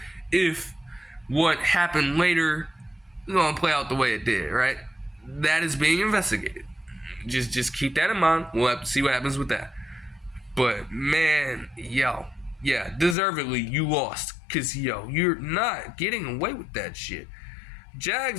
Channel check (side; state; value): right; drops out; at 13.2 s